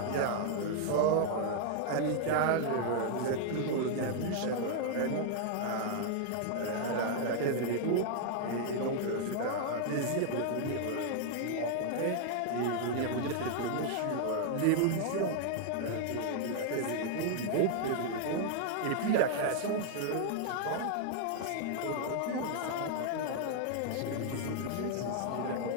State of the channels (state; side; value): different; both; correlation 0.00